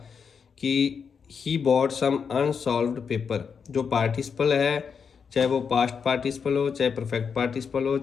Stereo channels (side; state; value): right; quieter; 6.3 dB